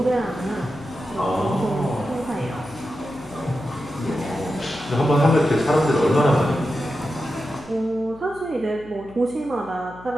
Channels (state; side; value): noise; left; hum, 20 dB below the sound